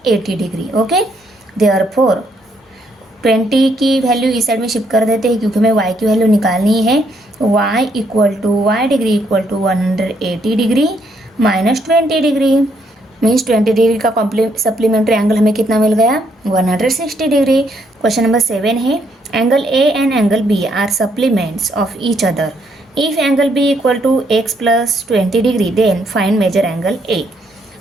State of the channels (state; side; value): normal; both; correlation 0.72